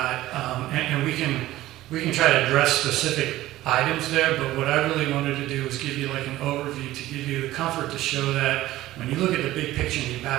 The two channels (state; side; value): quieter; left; 15.8 dB